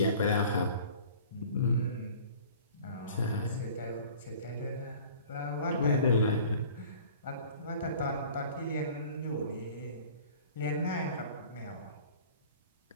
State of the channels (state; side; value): inverted; both; correlation -0.46